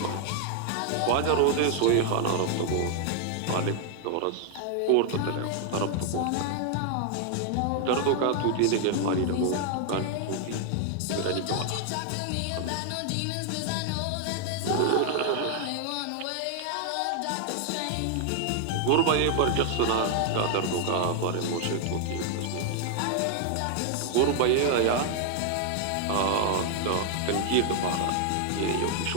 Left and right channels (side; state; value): both; different; correlation 0.00